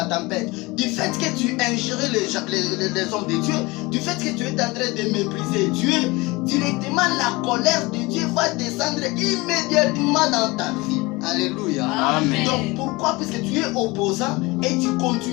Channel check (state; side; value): quieter; right; 23.3 dB